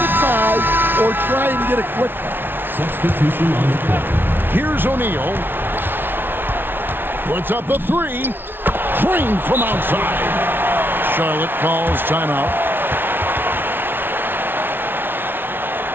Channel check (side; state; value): left; late; 0.10 ms